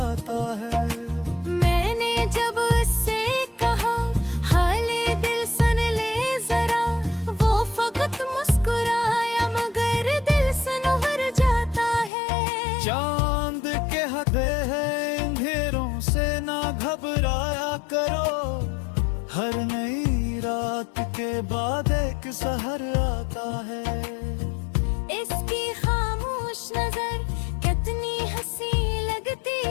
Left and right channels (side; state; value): right; drops out; at 12.1 s